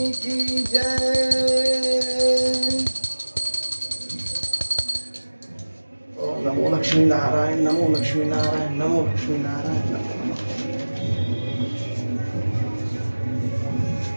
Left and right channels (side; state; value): both; inverted; correlation -1.00